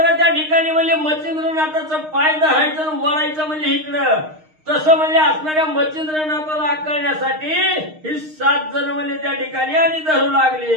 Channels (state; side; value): late; left; 6.5 ms